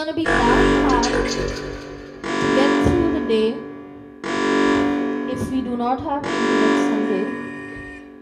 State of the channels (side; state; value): both; identical; correlation 1.00